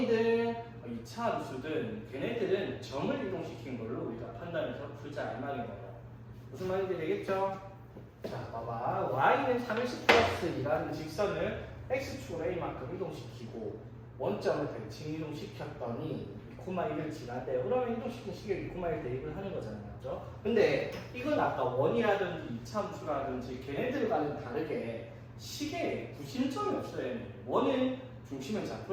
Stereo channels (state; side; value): identical; both; correlation 1.00